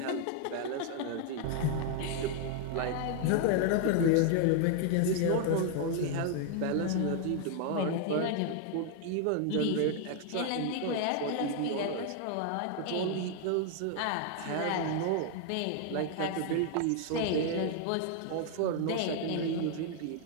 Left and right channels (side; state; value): both; different; correlation 0.00